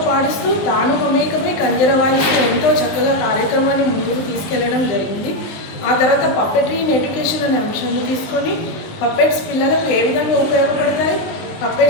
పాడిస్తూ తాను మమేకమై కంజర వాయిస్తూ ఎంతో చక్కగా కార్యక్రమాన్ని ముందుకు తీసుకెళ్లడం జరిగింది. ఆ తర్వాత పప్పెట్రీ ఇన్ ఎడ్యుకేషన్ అనే అంశాన్ని తీసుకొని పప్పెట్స్ పిల్లలకు ఏ విధంగా ఉపయోగపడతాయి,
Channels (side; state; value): right; late; 19 ms